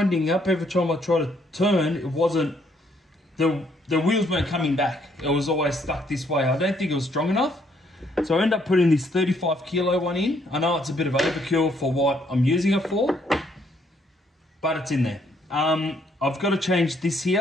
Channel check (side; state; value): both; normal; correlation 0.69